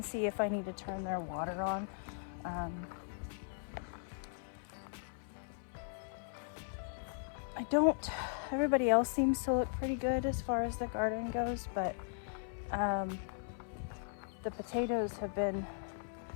see if I need to turn their water on. Everybody else seems to look pretty good as far as the garden goes, but the potatoes have been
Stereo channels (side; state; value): right; silent; 52 dB below the other